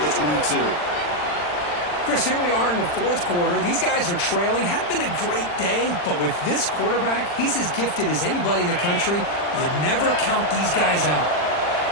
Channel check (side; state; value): right; late; 40 ms